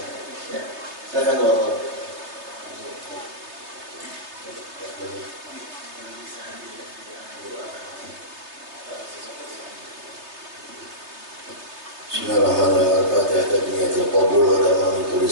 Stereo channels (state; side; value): late; left; 3.3 ms